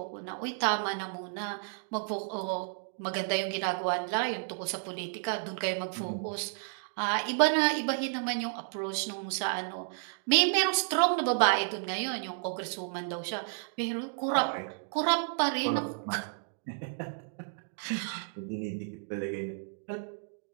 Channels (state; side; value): silent; left; digital silence